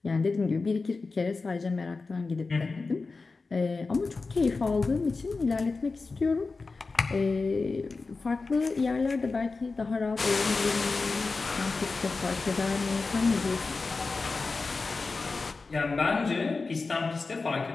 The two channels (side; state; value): right; quieter; 4.0 dB